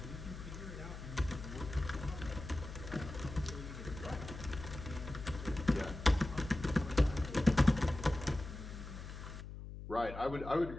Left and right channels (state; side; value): noise; left; hum, 10 dB below the sound